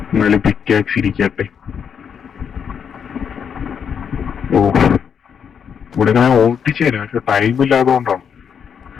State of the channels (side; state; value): right; quieter; 7.4 dB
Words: എന്നാലും പിക്കാക്സ് ഇരിക്കട്ടെ. ഇവിടെ ഞാൻ ഓട്ടിച്ചു തരാം, പക്ഷെ ടൈം ഇല്ലാത്തതുകൊണ്ടാണ്